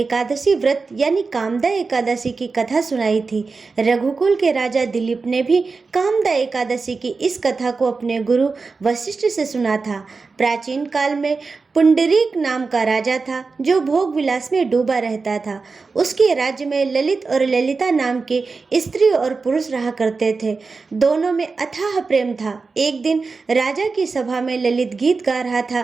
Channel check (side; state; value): left; quieter; 4.3 dB